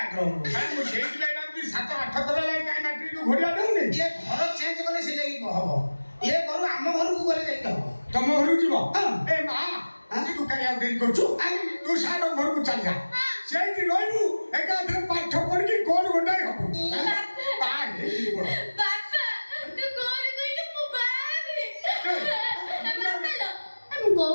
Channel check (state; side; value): inverted; both; correlation -1.00